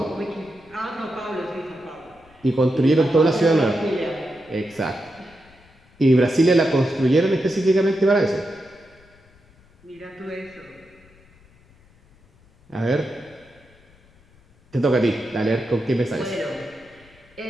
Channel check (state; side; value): noise; left; rumble, 29 dB below the sound